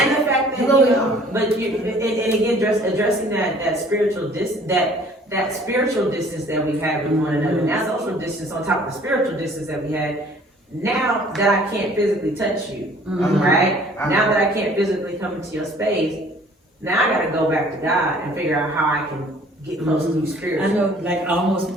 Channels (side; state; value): both; normal; correlation 0.54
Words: fact that, and again, addressing that spiritual that spiritual distance that we had with one another, and that social distance on top of the spiritual distance that we had. Now that I can't physically touch you, right? Now that I can't physically come into your space, now I gotta go back to God and figure out how I can get close to you spiritually. I know, like almost.